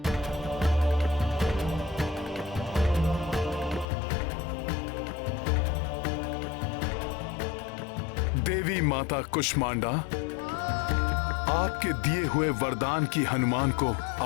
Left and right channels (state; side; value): drops out; right; at 3.9 s